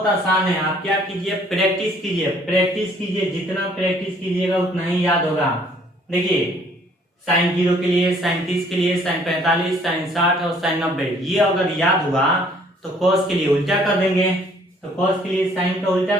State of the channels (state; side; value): normal; both; correlation 0.60